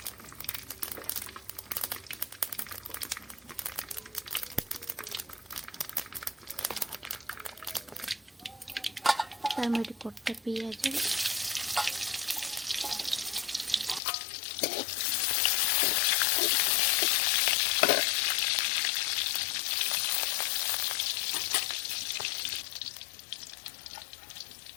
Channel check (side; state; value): right; drops out; at 14.0 s